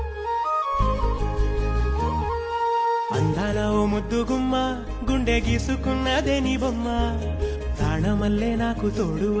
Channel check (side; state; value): both; identical; correlation 1.00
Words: అందాల ఓ ముద్దు గుమ్మ గుండె గీసుకున్నదే నీ బొమ్మ ప్రాణమల్లే నాకు తోడు